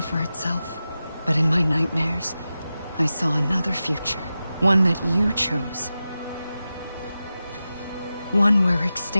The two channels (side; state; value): both; inverted; correlation -0.93